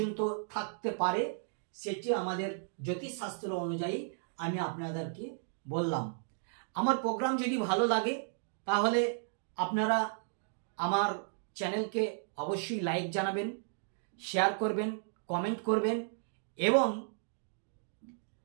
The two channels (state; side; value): silent; left; digital silence